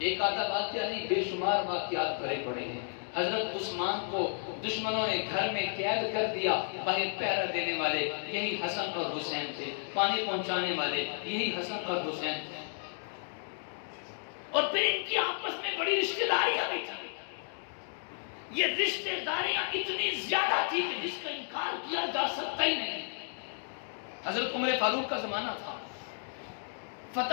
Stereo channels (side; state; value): right; silent; 56 dB below the other